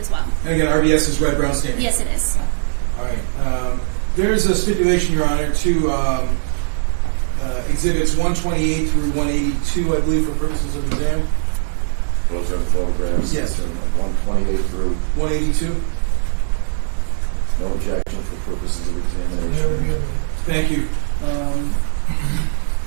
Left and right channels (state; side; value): silent; left; digital silence